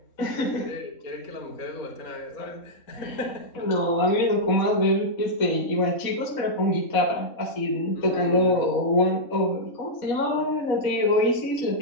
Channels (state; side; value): late; right; 4.2 ms